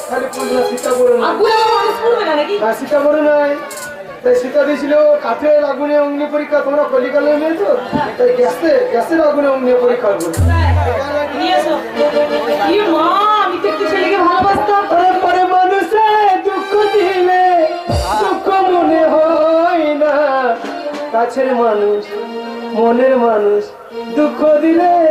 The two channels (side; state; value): both; identical; correlation 1.00